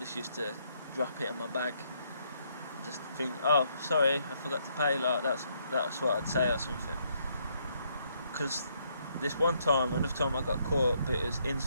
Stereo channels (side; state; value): both; inverted; correlation -0.72